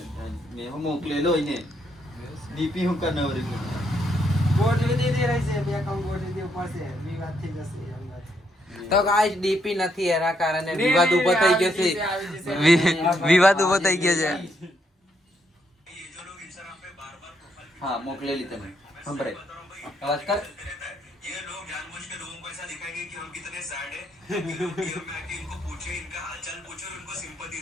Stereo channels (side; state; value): both; normal; correlation 0.75